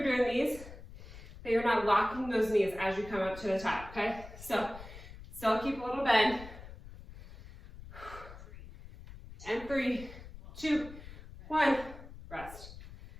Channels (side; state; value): left; noise; rumble, 15 dB below the sound